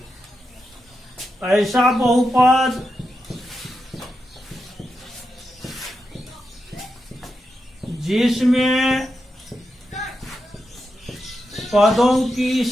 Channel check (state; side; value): normal; both; correlation 0.87